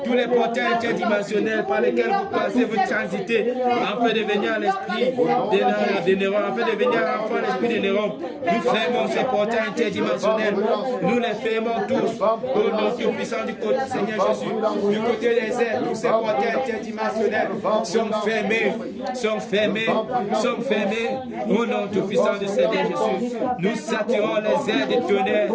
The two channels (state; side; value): identical; both; correlation 1.00